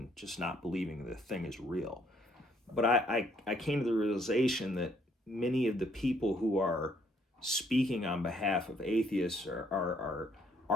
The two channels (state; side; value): normal; both; correlation 0.67